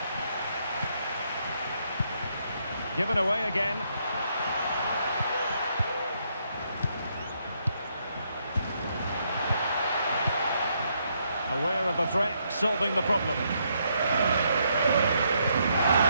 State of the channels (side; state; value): both; inverted; correlation -0.75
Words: Given away again. Aware of the threat, solving the problem.